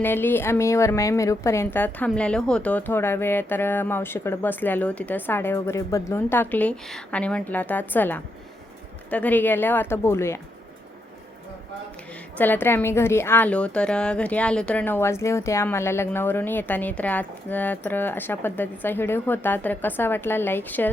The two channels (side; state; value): both; normal; correlation 0.81